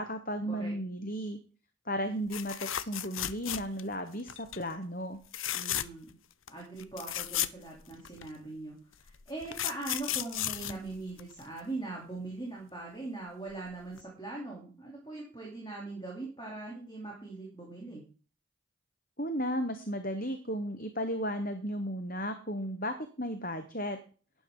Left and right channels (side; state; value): both; normal; correlation 0.28